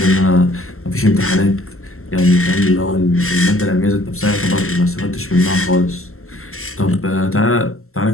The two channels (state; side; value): late; right; 0.62 ms